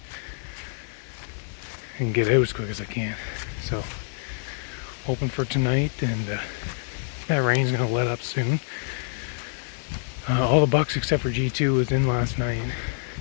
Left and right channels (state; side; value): silent; right; 61 dB below the other